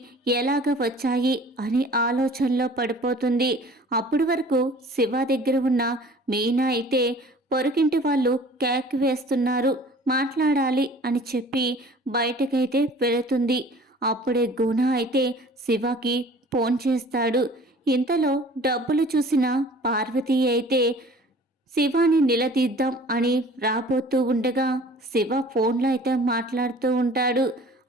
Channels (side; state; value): both; normal; correlation 0.48